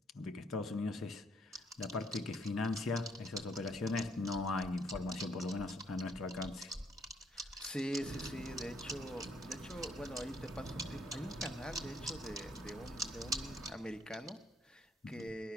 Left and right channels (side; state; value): both; normal; correlation 0.69